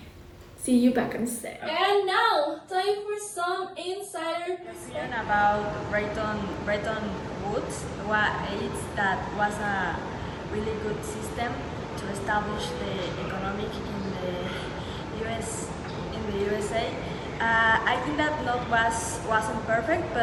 See you back on set. And now, time for some insider Opinion about Bretton Woods that was a really good system to establish the economic in the USA. I think that wasn't perfect,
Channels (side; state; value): both; identical; correlation 1.00